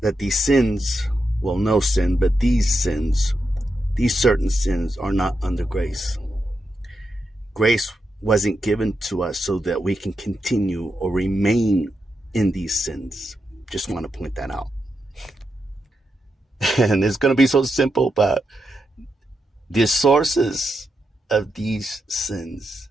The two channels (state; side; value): normal; both; correlation 0.86